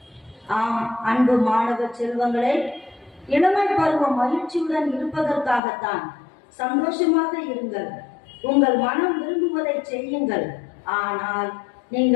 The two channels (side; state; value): right; drops out; at 5.6 s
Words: ஆம் அன்பு மாணவ செல்வங்களே, இளமை பருவம் மகிழ்ச்சியுடன் இருப்பதற்காகத்தான். சந்தோஷமாக இருங்கள், உங்கள் மனம் விரும்புவதை செய்யுங்கள். ஆனால்